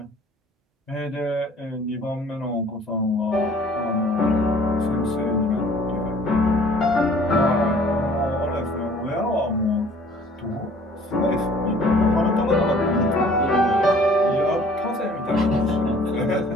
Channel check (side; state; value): both; normal; correlation 0.53